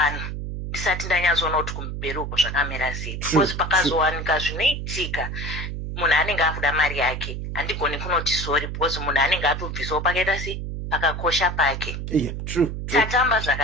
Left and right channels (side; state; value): right; noise; hum, 5 dB below the sound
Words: ndisati ndanyatsoona kuti kumberi uko zvakamira sei. Because pakazowanika zvinoitika munhu anenge akuda mari yake handigoni kunoti sorry because munhu anenge atobvisawo pakaita sei pakakosha pake. Tatamba